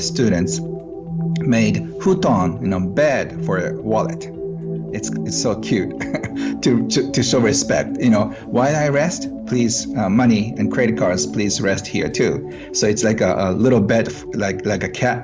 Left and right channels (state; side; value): identical; both; correlation 1.00